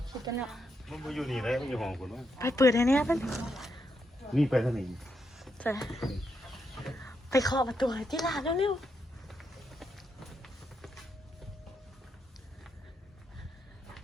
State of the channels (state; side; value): normal; both; correlation 0.81